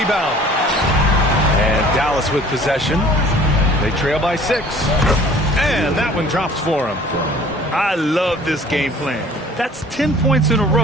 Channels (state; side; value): normal; both; correlation 0.50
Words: And Dallas with possession. They trail by 6. And that one drops for him. I love this game plan. That's 10 points in a